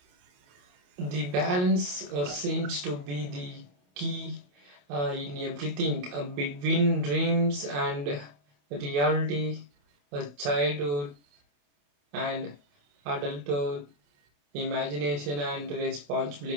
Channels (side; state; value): left; late; 28 ms